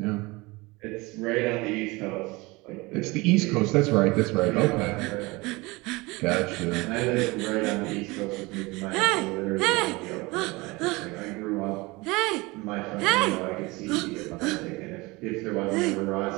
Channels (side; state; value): left; quieter; 23.5 dB